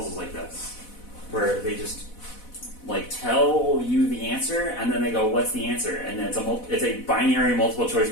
like this, where they just like tell you the answer and then they go, "What's the answer?" And then it's a binary multiple choice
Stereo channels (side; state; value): right; late; 4.1 ms